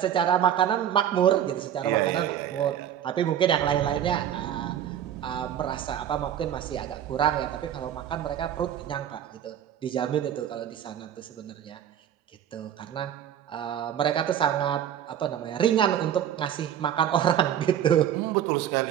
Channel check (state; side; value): quieter; left; 10.1 dB